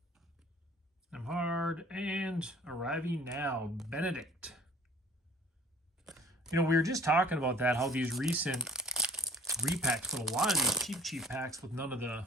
Nemhard, and arriving now, Benedict. You know, we were just talking about that, how these recent repacks, but a lot of these cheap packs with none of the,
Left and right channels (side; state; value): both; normal; correlation 0.51